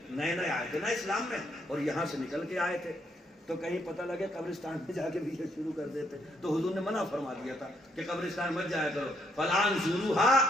نئے نئے آئے تھے نا اسلام میں اور یہاں سے نکل کے آئے تھے تو کہیں پتہ لگے قبرستان میں جا کے بھی یہ شروع کر دیتے تو حضور نے منع فرما دیا تھا کہ قبرستان مت جایا کرو فلان زوروہا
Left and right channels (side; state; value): both; normal; correlation 0.72